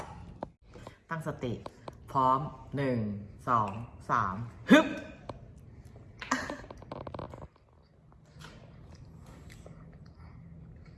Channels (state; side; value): identical; both; correlation 1.00